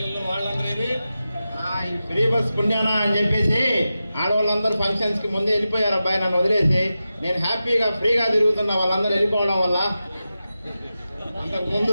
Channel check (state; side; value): inverted; both; correlation -0.92